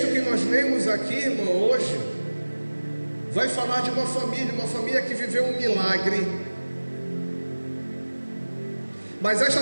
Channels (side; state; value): both; inverted; correlation -1.00